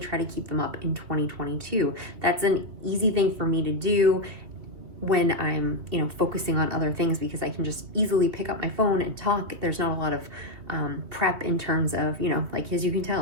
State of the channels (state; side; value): late; left; 2.8 ms